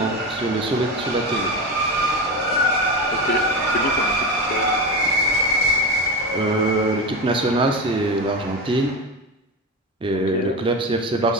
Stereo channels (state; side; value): normal; both; correlation 0.20